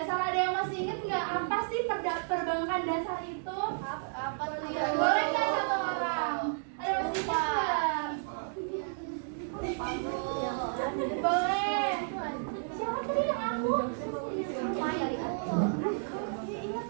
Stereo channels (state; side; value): silent; left; digital silence